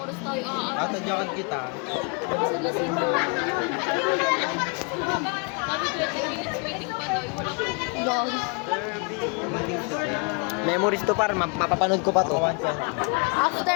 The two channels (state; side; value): quieter; right; 34.9 dB